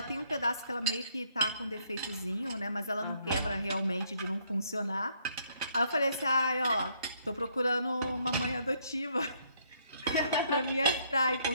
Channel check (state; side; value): inverted; both; correlation -0.69